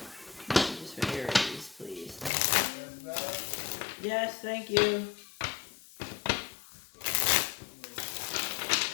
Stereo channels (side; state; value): right; drops out; at 2.3 s